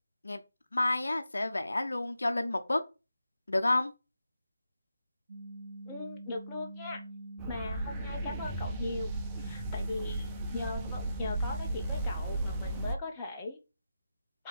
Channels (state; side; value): inverted; both; correlation -0.85